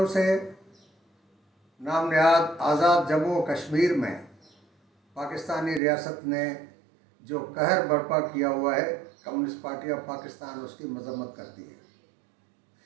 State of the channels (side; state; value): left; drops out; at 5.8 s